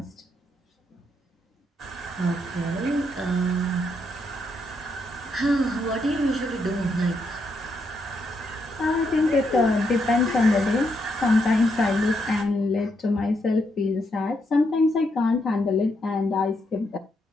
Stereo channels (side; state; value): both; normal; correlation 0.78